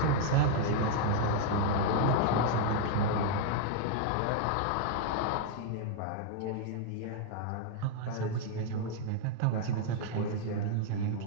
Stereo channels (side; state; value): both; different; correlation 0.00